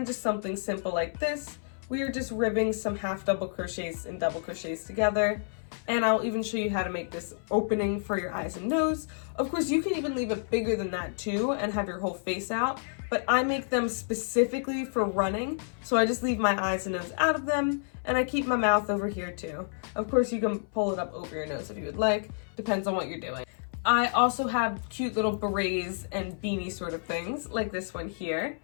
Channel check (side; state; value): right; silent; 58 dB below the other